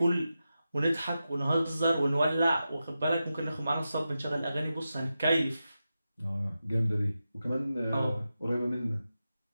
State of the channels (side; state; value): both; inverted; correlation -0.91